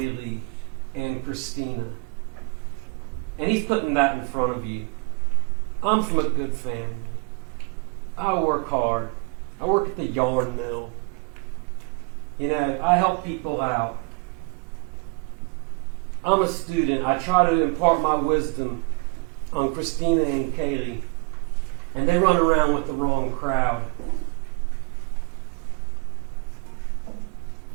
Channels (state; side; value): quieter; left; 30.5 dB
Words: and Christina. And he's putting that in front of you. I'm from a good family. I work hard. I work at the yarn mill. I help people out. I'm a student. I try to impart my wisdom on Christina and Kaylee. And they run around with the wrong crowd.